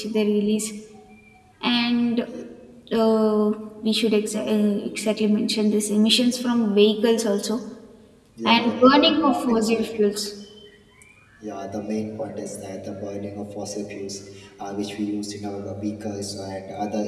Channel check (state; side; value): identical; both; correlation 1.00